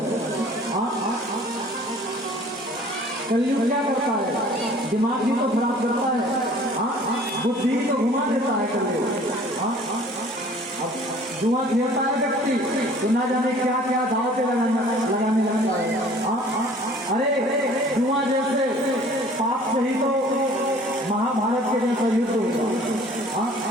कलयुग क्या करता है? दिमाग ही तो खराब करता है, बुद्धि तो घुमा देता है कलयुग। जुआ खेलता है व्यक्ति तो ना जाने क्या क्या दाव पे लगाने लगता है। अरे जुआ जैसे पाप से ही तो महाभारत के जैसा युद्ध हुआ।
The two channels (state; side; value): normal; both; correlation 0.51